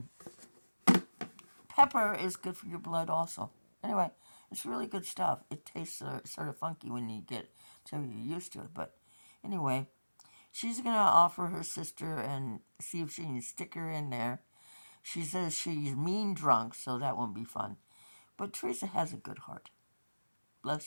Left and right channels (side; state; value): both; inverted; correlation -1.00